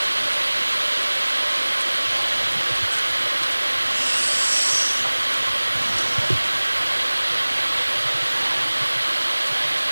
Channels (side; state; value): both; inverted; correlation -1.00